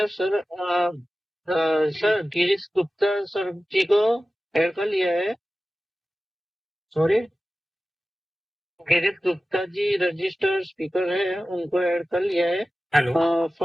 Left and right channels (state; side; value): normal; both; correlation 0.95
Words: sir. Sir, Girish Gupta sir जी को add कर लिया है. Sorry? Girish Gupta ji registered speaker है, उनको add कर लिया है. Hello.